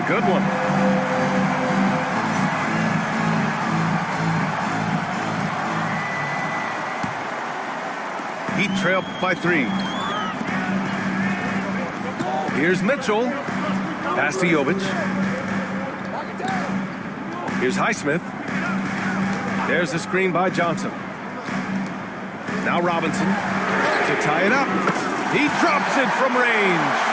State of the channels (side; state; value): both; identical; correlation 1.00